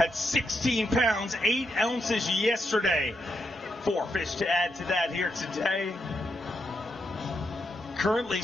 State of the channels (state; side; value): normal; both; correlation 0.82